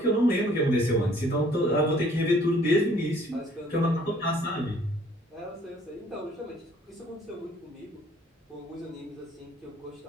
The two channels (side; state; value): both; normal; correlation 0.59